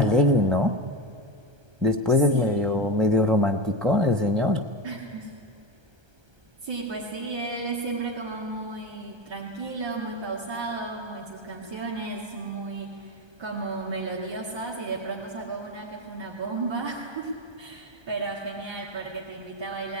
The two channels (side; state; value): left; late; 1.3 ms